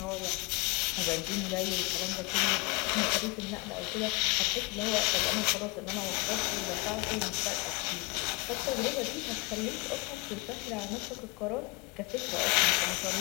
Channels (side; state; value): right; quieter; 26.9 dB